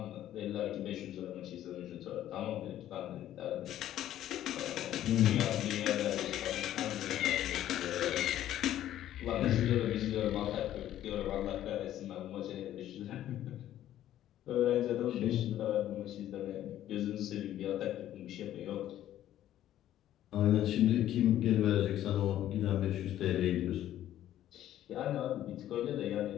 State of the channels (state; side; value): quieter; right; 12.4 dB